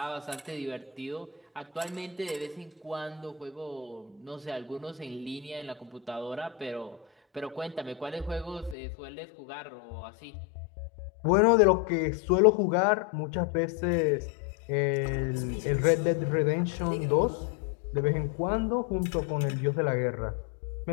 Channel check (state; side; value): drops out; right; at 8.8 s